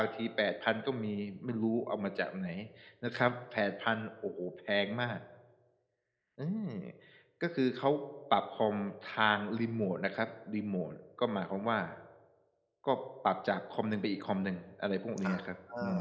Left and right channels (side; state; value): both; identical; correlation 1.00